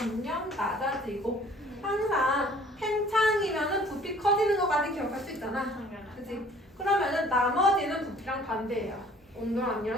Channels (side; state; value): both; normal; correlation 0.54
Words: 낮아지고 항상 팽창이면은 부피 커지는 것까지 기억할 수 있잖아. 그치? 그러면은 나머지는 부피랑 반대예요. 온도랑